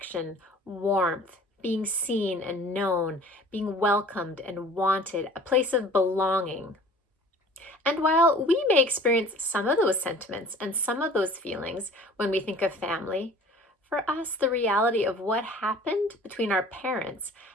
warmth, being seen and known, being welcomed and wanted, a place of belonging. And while we may experience some of those sentiments and some of those feelings when we think of family, for us, the reality of what happened between our parents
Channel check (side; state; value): both; normal; correlation 0.47